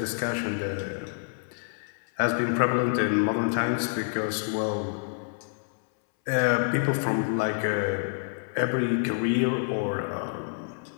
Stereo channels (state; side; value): silent; right; 60 dB below the other